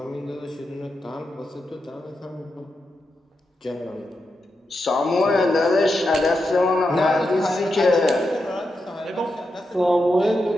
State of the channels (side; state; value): both; normal; correlation 0.87